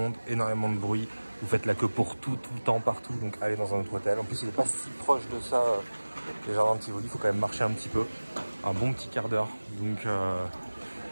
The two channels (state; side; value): inverted; both; correlation -1.00